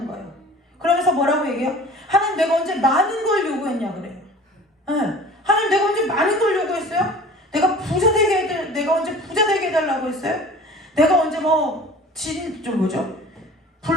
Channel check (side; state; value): both; normal; correlation 0.44